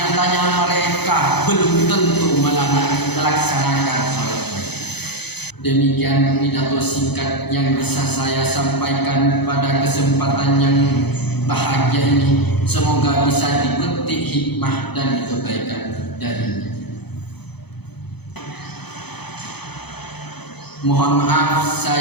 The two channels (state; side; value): late; right; 0.98 ms